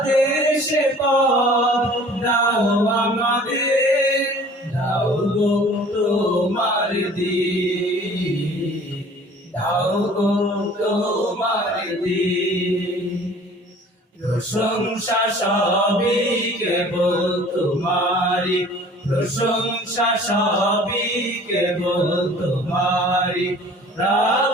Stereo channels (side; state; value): both; normal; correlation 0.49